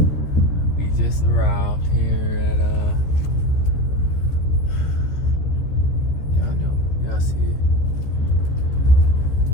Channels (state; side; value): late; right; 14 ms